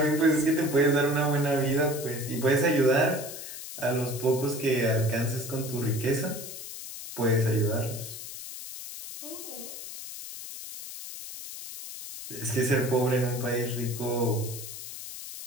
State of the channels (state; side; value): noise; left; hiss, 10 dB below the sound